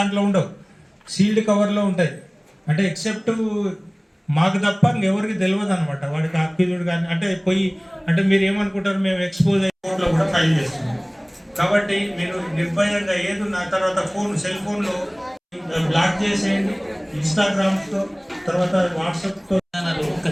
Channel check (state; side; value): identical; both; correlation 1.00